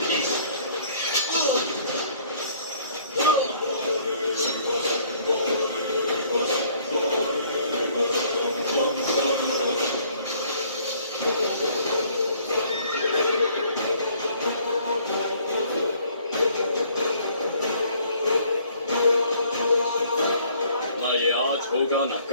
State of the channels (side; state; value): both; inverted; correlation -0.60